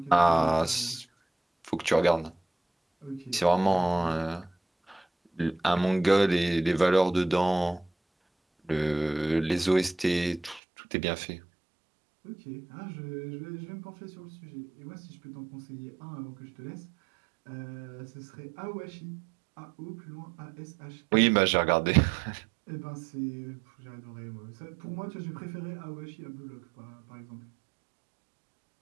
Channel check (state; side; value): drops out; left; at 10.6 s